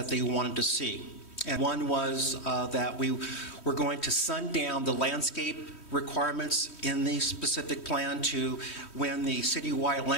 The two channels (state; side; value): late; right; 3.1 ms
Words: they wanted to see. And one was that we were going to sundown the landscape requirements in the specific plan to when the citywide